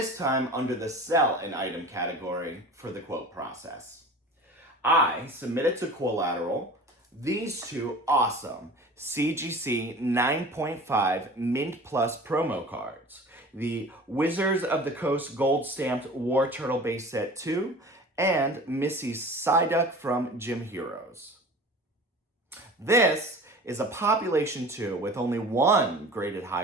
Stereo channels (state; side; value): normal; both; correlation 0.40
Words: time under the sell an item category for the quote process. I submitted to Qollateral these 2 awesome CGC 9.5 Mint Plus promo cards. The Wizards of the Coast Gold Stamped War Turtle Base Set 2 and Missy Psyduck from Gym Heroes. This is a population 2 with only 1 graded